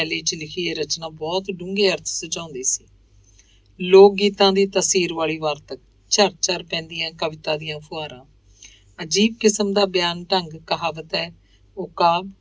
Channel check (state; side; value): identical; both; correlation 1.00